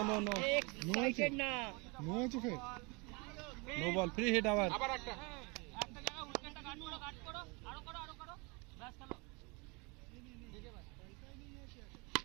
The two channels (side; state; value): left; quieter; 28.8 dB